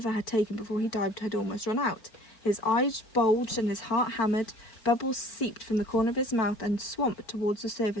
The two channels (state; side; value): late; right; 4.5 ms